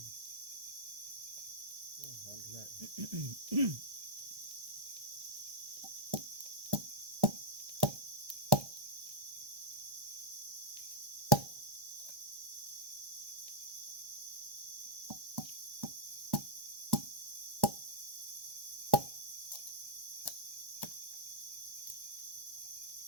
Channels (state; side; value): late; left; 1.1 ms